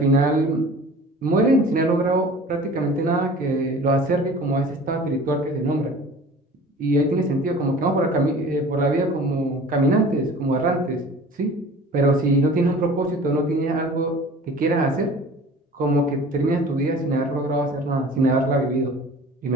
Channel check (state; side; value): normal; both; correlation 0.43